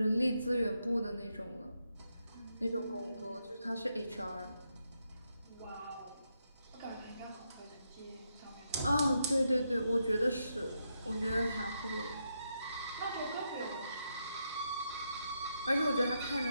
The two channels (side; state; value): both; inverted; correlation -0.81